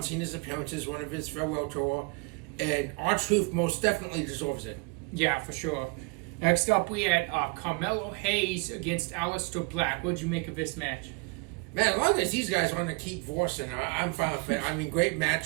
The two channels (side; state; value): left; quieter; 29.8 dB